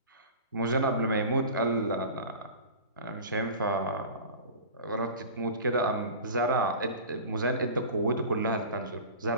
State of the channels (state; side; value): inverted; both; correlation -0.36